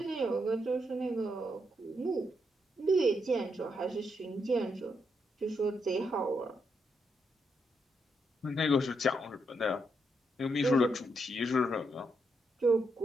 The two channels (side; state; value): both; normal; correlation 0.80